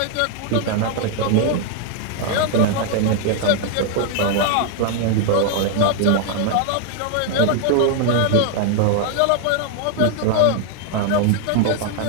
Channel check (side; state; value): both; different; correlation 0.00